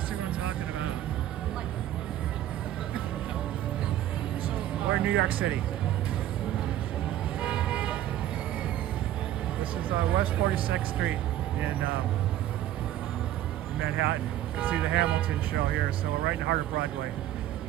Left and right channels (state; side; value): quieter; left; 12.8 dB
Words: what I'm talking about. We're in New York City. This is West 46th Street in Manhattan. You can see the Hamilton show here, so we're right in the heart of Broadway